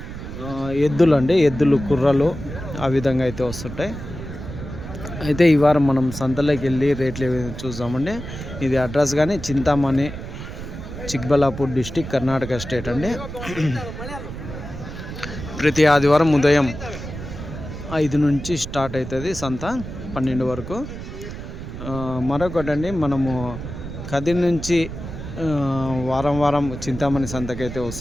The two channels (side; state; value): right; noise; rumble, 9 dB below the sound